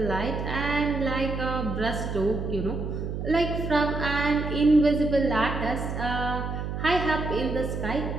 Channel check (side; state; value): right; noise; hum, 4 dB below the sound